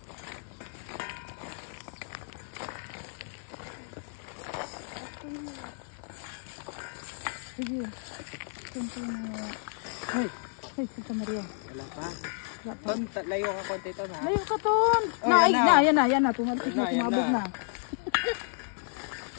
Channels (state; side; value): silent; right; digital silence